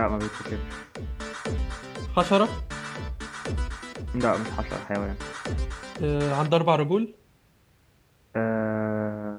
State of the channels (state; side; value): identical; both; correlation 1.00